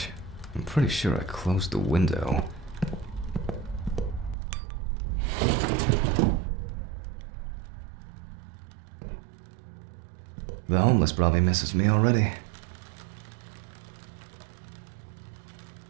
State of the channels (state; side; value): drops out; left; at 4.4 s